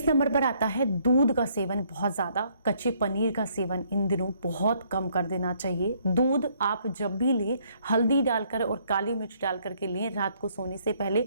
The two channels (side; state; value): both; inverted; correlation -0.67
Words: नंबर पर आता है दूध दूध का सेवन बहुत ज़्यादा, कच्चे पनीर का सेवन इन दिनों बहुत कम कर देना चाहिए। दूध आप जब भी लें हल्दी डालकर और काली मिर्च डाल करके लें, रात को सोने से पहले,